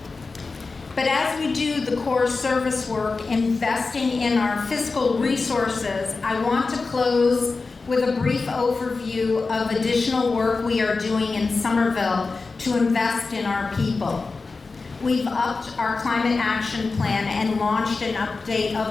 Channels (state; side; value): quieter; right; 4.1 dB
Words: But as we do the core service work, investing in our fiscal resources, I want to close with a brief overview of additional work we are doing in Somerville to invest in our people. We've upped our climate action plan and launched an update